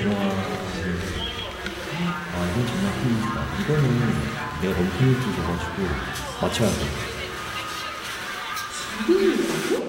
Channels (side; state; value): both; identical; correlation 1.00